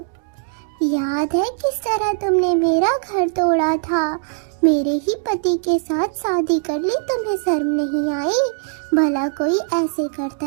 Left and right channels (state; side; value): silent; left; digital silence